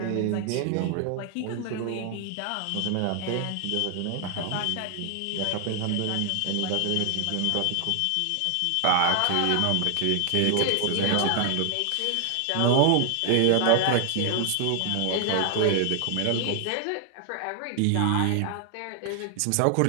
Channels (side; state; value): both; different; correlation 0.00